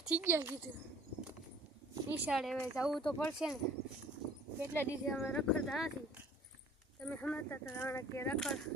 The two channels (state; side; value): normal; both; correlation 0.52